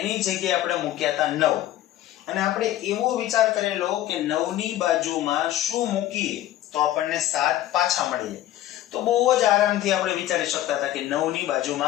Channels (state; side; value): quieter; right; 13.7 dB